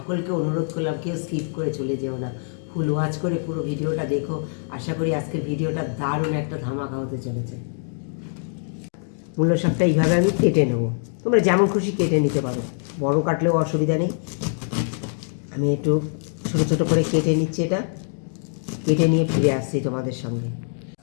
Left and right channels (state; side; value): silent; right; digital silence